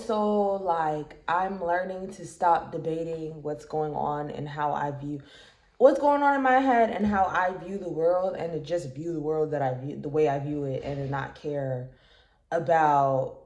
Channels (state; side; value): identical; both; correlation 1.00